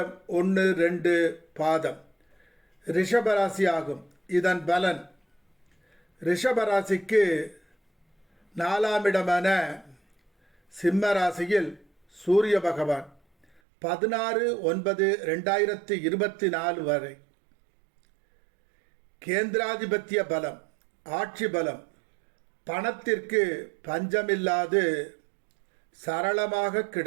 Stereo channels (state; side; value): drops out; left; at 13.6 s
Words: 1, 2 பாதம் ரிஷபராசி ஆகும். இதன் பலன் ரிஷபராசிக்கு 4ஆம் இடமான சிம்ம ராசியில் சூரிய பகவான் 16/9/2024 வரை கேந்திராதிபத்திய பலம், ஆட்சி பலம், பணத்திற்கு பஞ்சமில்லாது சரளமாக